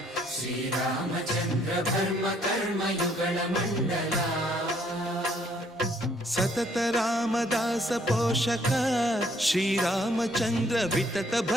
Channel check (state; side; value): normal; both; correlation 0.65